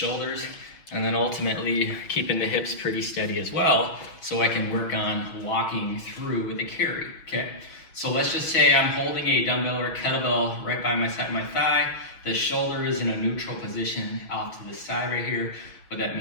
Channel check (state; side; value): late; right; 6.2 ms